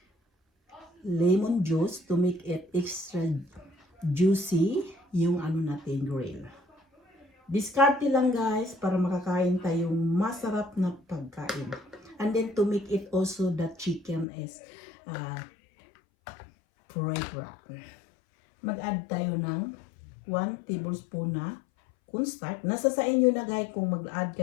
lemon juice to make it extra juicy yung natin grill. Discarte lang guys para makakain tayong masarap na pagkain. And then to make it also the chicken is fragrant. Mag-add tayo ng 1 tablespoon na cornstarch. Nasa sa inyo na guys kung mag-add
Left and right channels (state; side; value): drops out; right; at 14.2 s